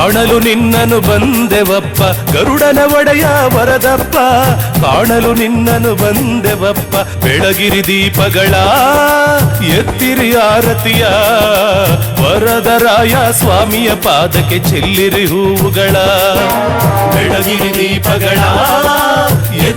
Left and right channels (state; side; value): identical; both; correlation 1.00